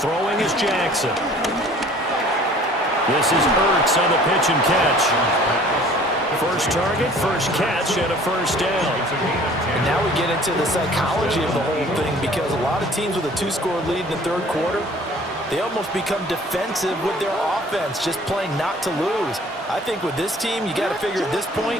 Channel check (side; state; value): both; normal; correlation 0.51